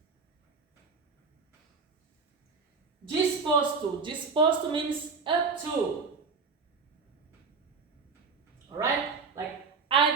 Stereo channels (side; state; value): left; quieter; 4.9 dB